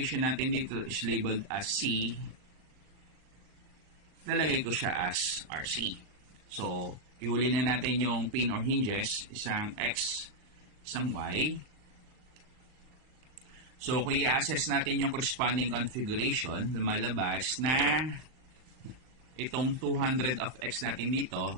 natin dito is labeled as C, lalagay ko siya as RC. So, ihuli na natin yung pin or hinges, isang X, isang Y. So, kung i-assess natin yung corresponding configuration, lumalabas na itong 200 of X natin dito,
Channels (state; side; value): late; left; 38 ms